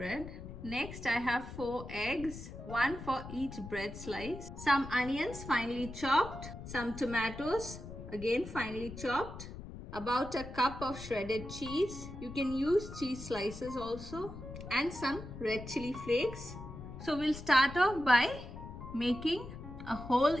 Next I have 4 eggs, 1 for each bread slice, some onions finely chopped, some tomatoes again finely chopped, about a cup of shredded cheese. You can use cheese slices also, and some red chili flakes. So we'll start off by making a hole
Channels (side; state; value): left; noise; rumble, 11 dB below the sound